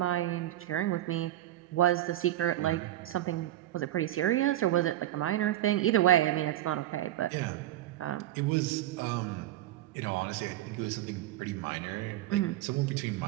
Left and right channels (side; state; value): left; quieter; 13.8 dB